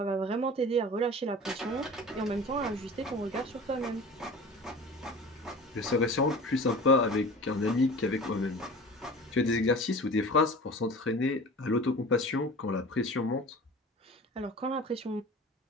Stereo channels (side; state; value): both; normal; correlation 0.38